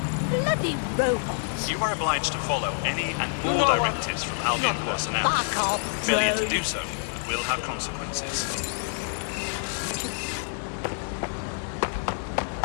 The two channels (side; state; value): right; silent; 60 dB below the other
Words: Bloody robots. You are obliged to follow any and all directives from Albion personnel. Fuck off, Failure to drone. do so will have consequences. No due